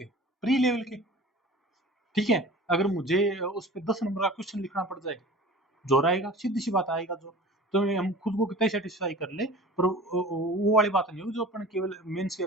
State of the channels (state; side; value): normal; both; correlation 0.40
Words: प्री लेवल के। ठीक है, अगर मुझे उस पर 10 नंबर का क्वेश्चन लिखना पड़ जाए, जोर आएगा, सीधी सी बात आएगा जो, तो हम खुद को कितना सेटिस्फाई कर ले, पर वो वाली बात नहीं होगी जो अपन केवल मेंस के